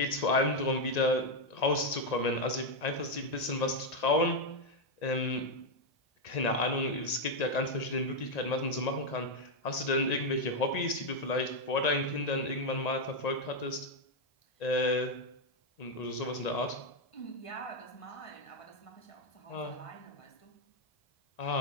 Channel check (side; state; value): right; late; 1.9 ms